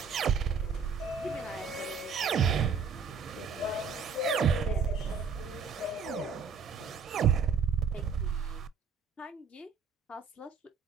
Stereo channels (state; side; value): quieter; left; 5.6 dB